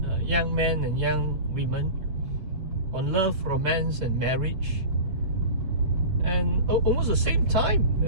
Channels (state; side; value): late; left; 8.1 ms